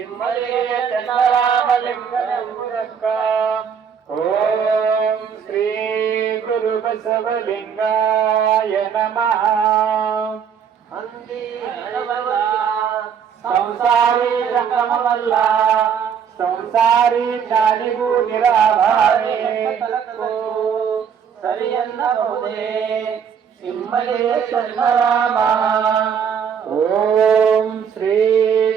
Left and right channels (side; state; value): left; quieter; 7.4 dB